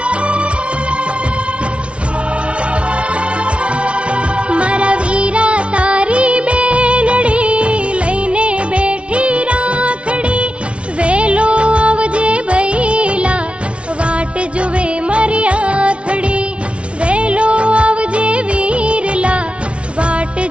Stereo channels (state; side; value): late; left; 0.060 ms